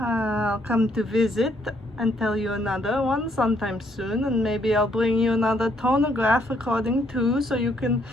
come to visit and tell you another one sometime soon, and maybe I'll bring you another tonograph recording too, so you can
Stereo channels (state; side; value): normal; both; correlation 0.70